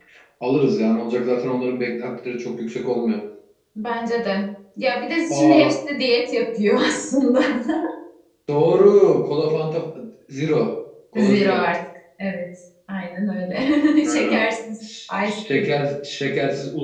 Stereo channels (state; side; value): identical; both; correlation 1.00